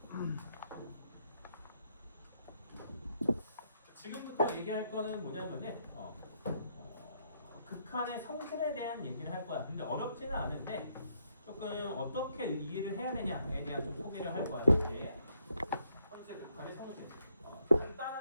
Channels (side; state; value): both; inverted; correlation -0.73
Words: 지금부터 얘기할 거는 뭐냐면은 극한의 성질에 대한 얘기를 할 거야. 근데 어렵지는 않은데 조금 어떻게 이해를 해야 되냐에 대한 좀 소개를 할 거야. 이제 현재 극한의 성질.